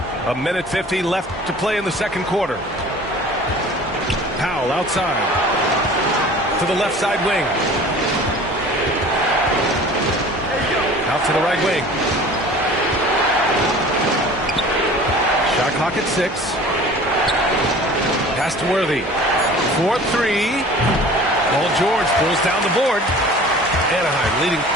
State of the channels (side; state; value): both; normal; correlation 0.44